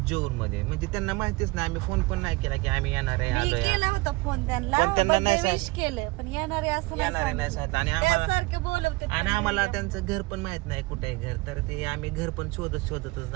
म्हणजे त्यांना माहितीच नाही, आम्ही फोन पण नाही केला की आम्ही येणार आहे, आलोय. केला होता फोन त्यांना, त्यांना नाही विश केलं, पण येणार आहे असं येणार नाही सांगितलं. आणि आम्हाला सारखे बोलवते आणि आम्हाला त्यांचं घर पण माहित नाही कुठे आहे घर. तर ते आम्ही घर पण शोधतच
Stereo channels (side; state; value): left; quieter; 23.3 dB